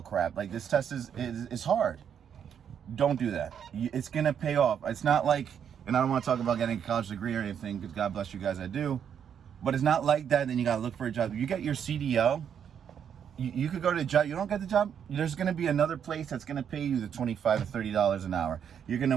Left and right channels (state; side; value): quieter; left; 8.2 dB